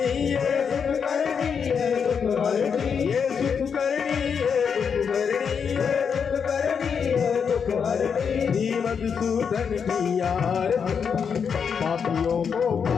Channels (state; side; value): quieter; right; 6.6 dB